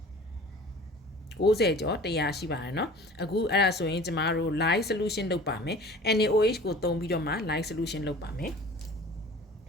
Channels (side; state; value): both; normal; correlation 0.43